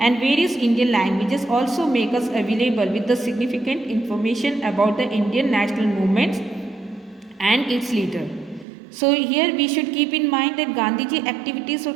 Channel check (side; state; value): left; drops out; at 8.7 s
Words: and various Indian languages also make us available with the significant information about the Indian national movements and its leader. So here we should keep in mind that Gandhiji activities